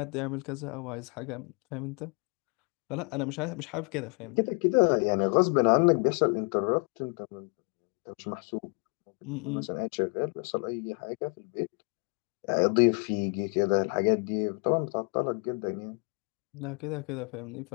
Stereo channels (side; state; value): right; quieter; 36.0 dB